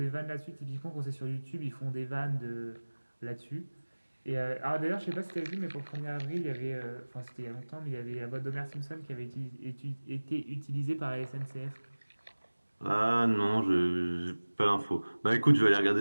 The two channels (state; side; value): inverted; both; correlation -1.00